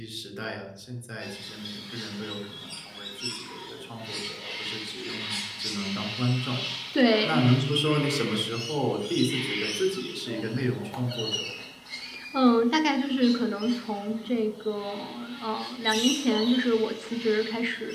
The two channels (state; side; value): identical; both; correlation 1.00